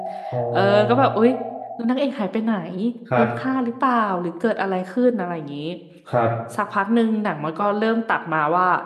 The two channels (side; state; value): both; identical; correlation 1.00